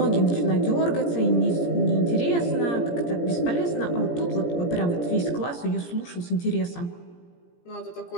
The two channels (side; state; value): right; late; 17 ms